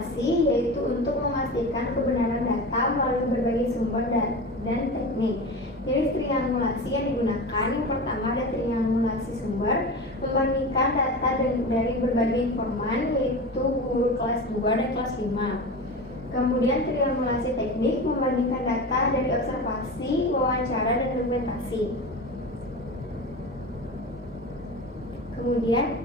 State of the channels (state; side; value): normal; both; correlation 0.29